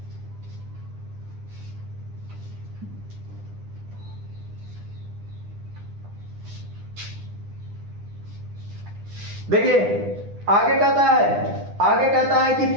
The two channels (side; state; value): left; late; 9.9 ms